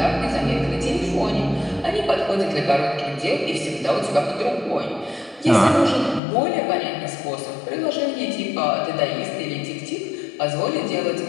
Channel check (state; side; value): drops out; right; at 6.2 s